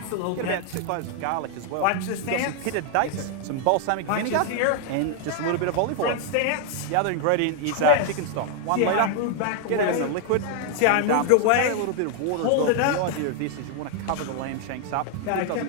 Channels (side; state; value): both; different; correlation 0.00